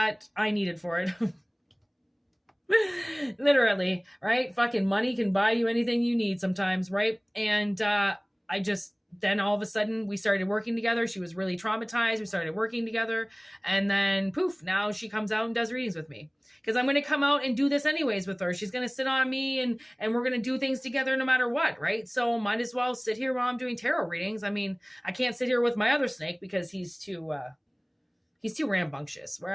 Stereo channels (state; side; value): identical; both; correlation 1.00